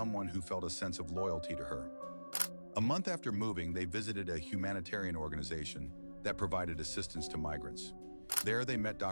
who felt a sense of loyalty to her. A month after moving, they visited a humanitarian organization that provided assistance to migrants. There they met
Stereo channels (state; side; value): inverted; both; correlation -1.00